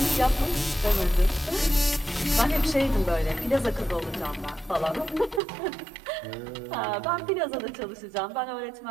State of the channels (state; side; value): drops out; left; at 5.4 s